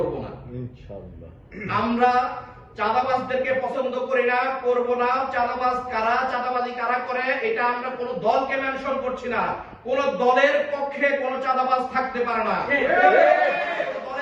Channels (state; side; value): identical; both; correlation 1.00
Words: না। ইনশাআল্লাহ। আমরা চাঁদাবাজদেরকে পছন্দ করি না, করব না। চাঁদাবাজ কারা, চাঁদাবাজি কারা করে, এটা আমরা কোন দলকে মেনশন করছি না। কোন দলের পক্ষে কোন চাঁদাবাজ থাকতে পারে না,